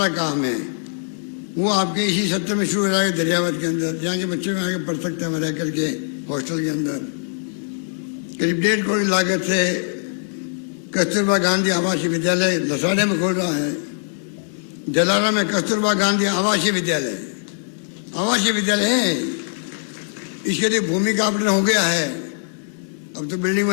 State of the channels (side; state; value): right; silent; 64 dB below the other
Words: काम है। वो आपके इसी सत्र में शुरू हो जाएगा दरियावद के अंदर, जहाँ के बच्चे में आगे पढ़ सकते हैं रह करके हॉस्टल के अंदर। करीब 1.5 करोड़ लागत से कस्तूरबा गांधी आवासीय विद्यालय लसाड़े में खोल रहा है। जलारा में कस्तूरबा गांधी आवासीय विद्यालय है। इसके लिए भूमि का आवंटन हो गया है, अब तो बिल्डिंग